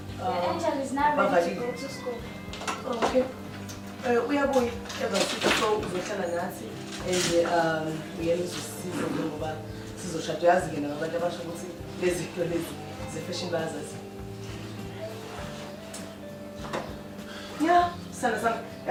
Angel is now ready to go to school. Okay. Uyabuya ebasithi so uzohlala nathi uyena uzosiza ngoba sizoshada yazi ke nabantu abasho ukuthi lezi zinto lezi ze-fashion bazazi. Yeah, sana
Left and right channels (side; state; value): both; identical; correlation 1.00